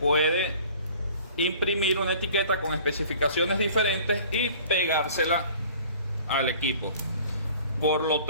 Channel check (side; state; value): both; inverted; correlation -0.48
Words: imprimir una etiqueta con especificaciones diferentes y pegársela al equipo. Por lo